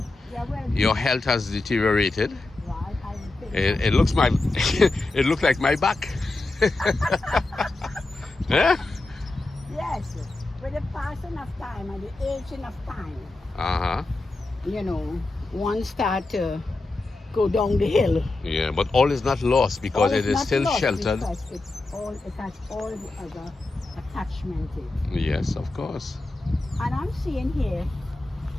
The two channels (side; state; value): right; quieter; 3.1 dB